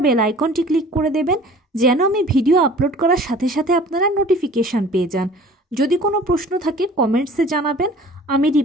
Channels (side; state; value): both; normal; correlation 0.47